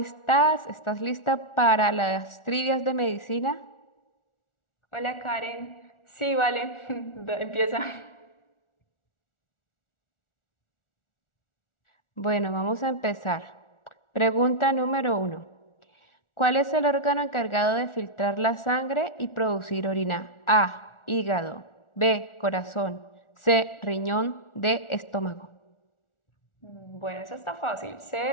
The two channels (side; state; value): right; late; 1.4 ms